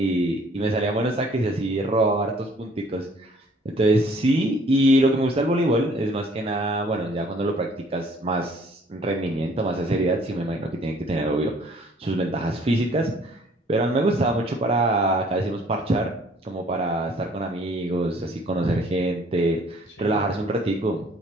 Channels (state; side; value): normal; both; correlation 0.58